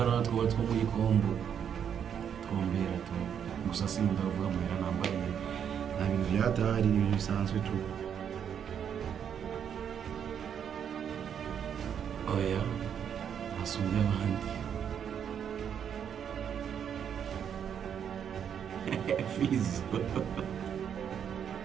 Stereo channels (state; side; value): quieter; left; 8.3 dB